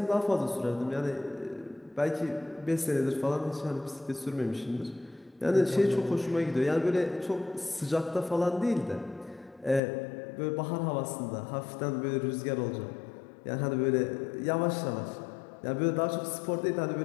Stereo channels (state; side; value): drops out; right; at 9.8 s